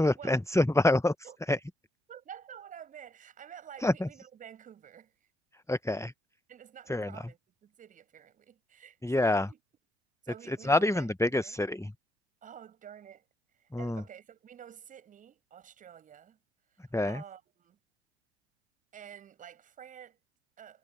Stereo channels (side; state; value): both; normal; correlation 0.80